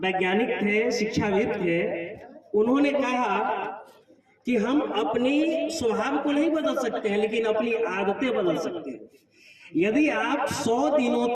थे, शिक्षाविद थे। उन्होंने कहा कि हम अपनी स्वभाव को नहीं बदल सकते हैं, लेकिन अपनी आदतें बदल सकते हैं। यदि आप 100 दिनों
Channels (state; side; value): identical; both; correlation 1.00